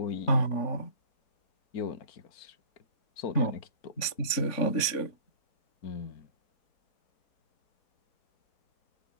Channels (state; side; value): late; right; 3.6 ms